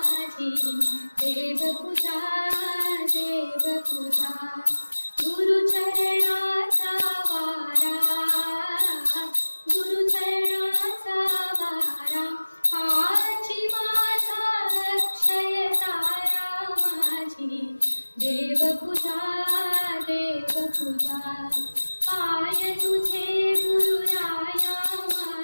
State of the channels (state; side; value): inverted; both; correlation -1.00